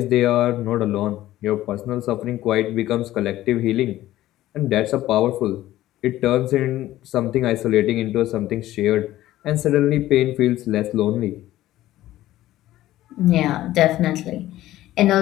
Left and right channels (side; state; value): right; quieter; 14.8 dB